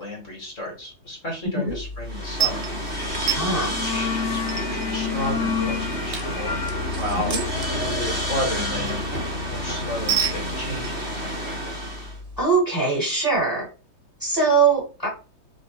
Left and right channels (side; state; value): right; late; 3.2 ms